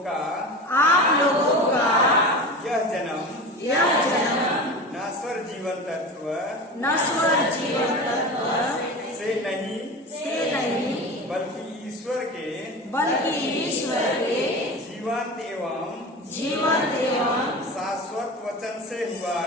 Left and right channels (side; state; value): both; normal; correlation 0.31